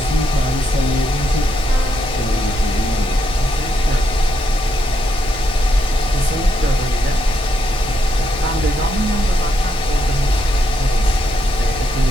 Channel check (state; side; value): normal; both; correlation 0.79